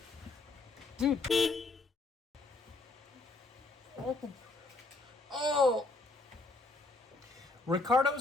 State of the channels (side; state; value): right; quieter; 3.3 dB